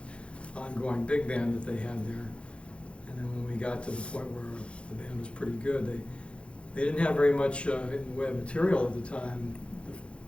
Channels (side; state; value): right; late; 0.059 ms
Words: ongoing big band that they had there. And then when we got to the point where the band was pretty good, they didn't have very much in the way of material at the time.